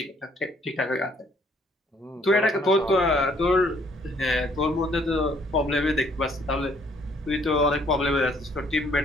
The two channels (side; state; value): both; normal; correlation 0.64